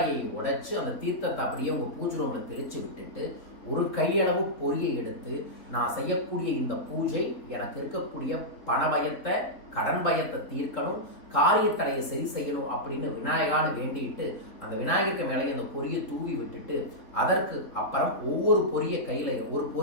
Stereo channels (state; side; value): late; right; 3.8 ms